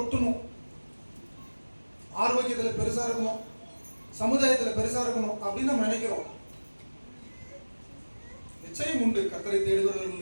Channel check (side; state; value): both; inverted; correlation -1.00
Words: ஆரோக்கியத்தில் பெருசா இருக்கணும், சமுதாயத்தில் பெருசா இருக்கணும் அப்படின்னு நம்ம நினைக்கிறோம். நிச்சயம் உண்டு. கர்த்தரை